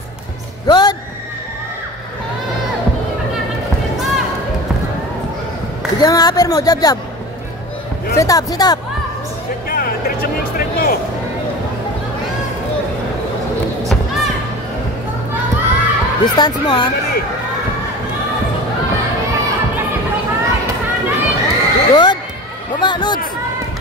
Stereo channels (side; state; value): both; normal; correlation 0.34